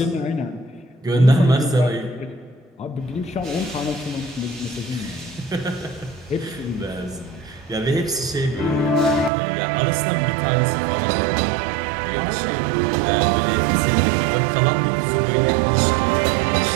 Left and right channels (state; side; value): drops out; left; at 9.3 s